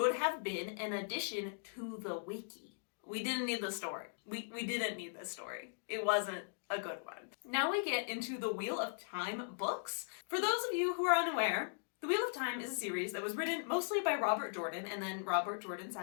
have been an addition to the wiki. We didn't need the story. We didn't need this story. It wasn't a good one. Now we get into the Wheel of Time books. For those of you who are unaware, the Wheel of Time is a series that was written mostly by Robert Jordan, and then Robert Jordan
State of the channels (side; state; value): right; silent; digital silence